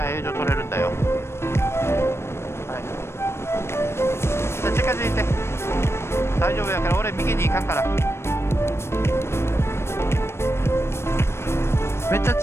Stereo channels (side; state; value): right; late; 0.12 ms